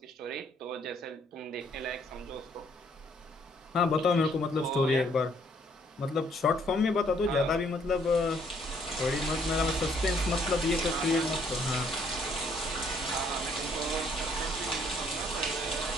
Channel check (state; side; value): normal; both; correlation 0.66